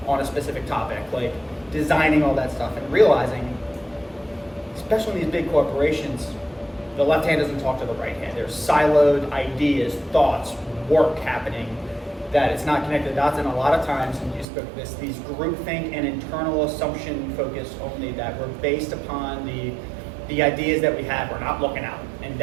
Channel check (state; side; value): drops out; left; at 14.5 s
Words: on a specific topic, like designing all that stuff and realizing, especially in these big corporations, the left hand doesn't talk to the right hand. There's siloed ideas, thoughts, work happening that it's not connected the dots, and a lot of times, and you spoke to this, these groupthink and internal assumption focus only that were based upon the ideas that we have. We're not looking out. And